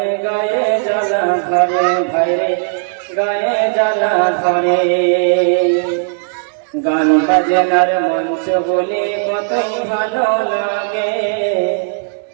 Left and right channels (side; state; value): left; silent; digital silence